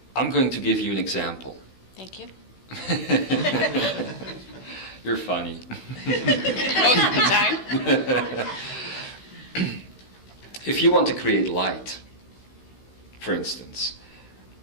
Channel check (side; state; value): right; late; 16 ms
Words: I'm going to give you an example. Thank you. You're funny. Most of the time. If you want to create light, for instance,